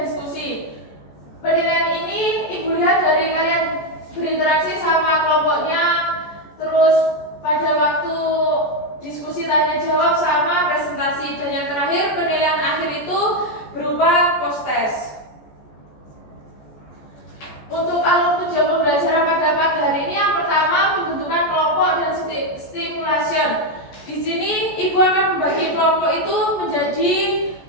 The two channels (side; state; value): right; late; 14 ms